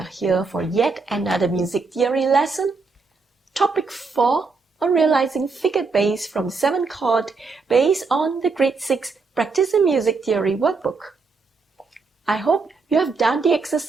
here for yet another music theory lesson. Topic 4 on realizing figured bass from 7 chord based on the Grade 6 Practicing Music Theory workbook. I hope you have done the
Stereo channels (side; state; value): left; quieter; 4.3 dB